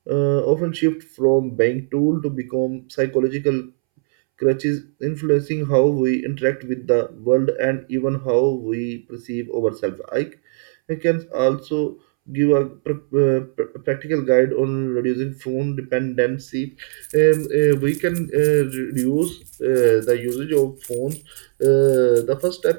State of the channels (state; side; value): silent; left; 66 dB below the other